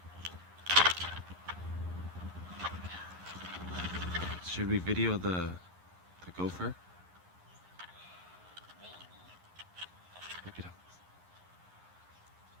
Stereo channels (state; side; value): late; left; 11 ms